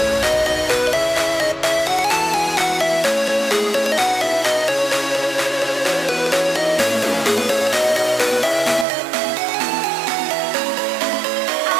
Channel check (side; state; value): left; drops out; at 8.8 s